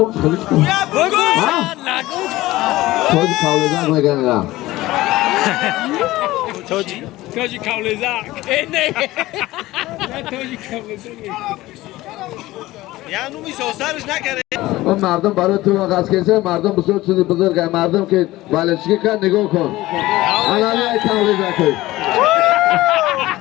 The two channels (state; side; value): quieter; right; 17.7 dB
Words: خلیچ کن تویجی کاولزک نگنه توجی کاولزک اینه توجی کاولزک یعنی میسازرش نکرده اون مردم برای تو آغاز کسی مردم بسیار چیزی بزرگه مردم که بالشگی کن نگاه کن علامه کاولزک